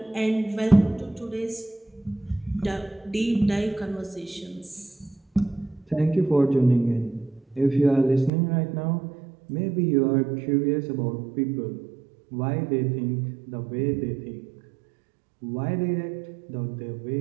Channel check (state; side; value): drops out; left; at 8.3 s